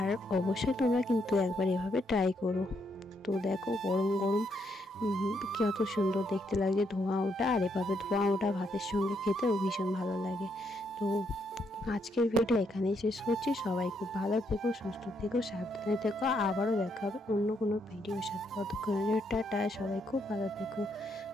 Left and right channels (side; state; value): both; normal; correlation 0.76